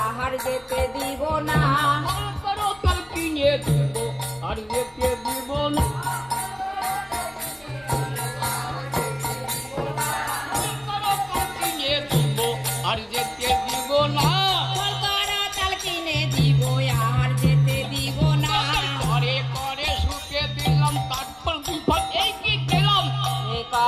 আর যেতে দিব না, করো তোর কিনে দিব আর যেতে দিব না, করো তোর কিনে দিব আর যেতে দিব না, চাল কিনে দিব আর যেতে দিব না, করে করে শুকে দিলাম তারপর বিপদ এই কি পেলাম, এ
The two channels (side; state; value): both; identical; correlation 1.00